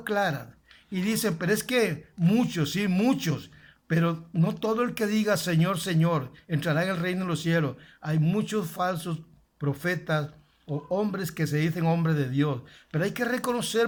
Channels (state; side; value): identical; both; correlation 1.00